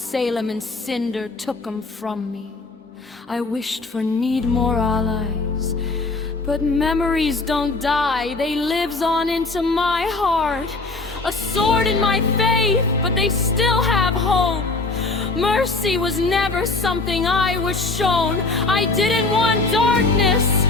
and Cinder took 'em from me. I wished for need more allies, but memories don't die, they lives on into my heart. A sword in my faith, but they still have hope. Mercy was never something I was shown. I didn't want darkness,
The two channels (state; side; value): quieter; right; 3.5 dB